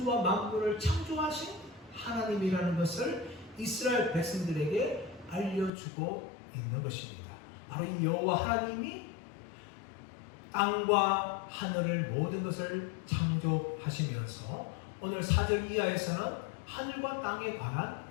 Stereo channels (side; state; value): right; drops out; at 5.7 s